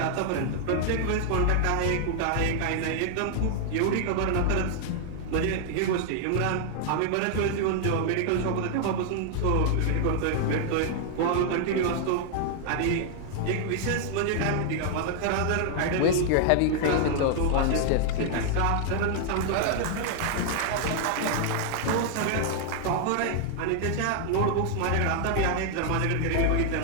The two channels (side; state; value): both; different; correlation 0.00